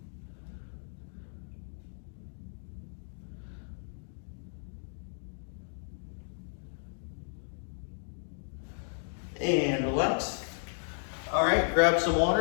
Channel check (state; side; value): silent; right; digital silence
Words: And relax. All right, grab some